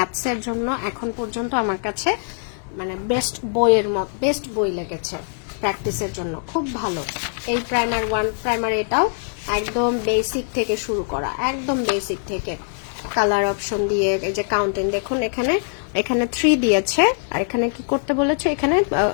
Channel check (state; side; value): silent; right; digital silence